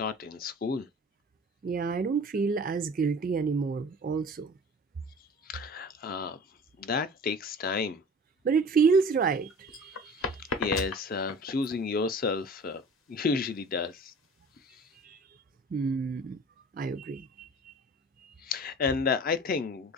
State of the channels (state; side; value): normal; both; correlation 0.42